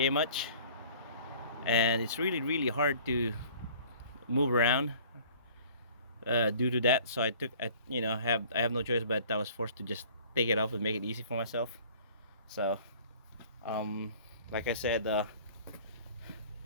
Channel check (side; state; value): both; inverted; correlation -0.50